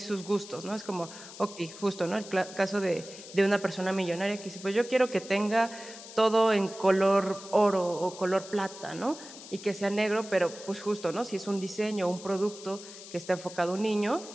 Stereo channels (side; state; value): left; noise; hiss, 15 dB below the sound